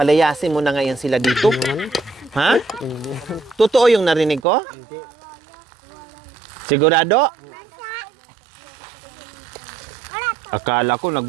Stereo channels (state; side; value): drops out; left; at 4.5 s